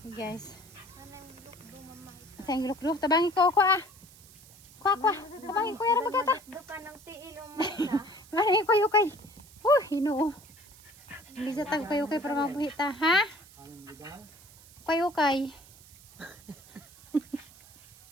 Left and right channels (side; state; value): right; noise; hiss, 23 dB below the sound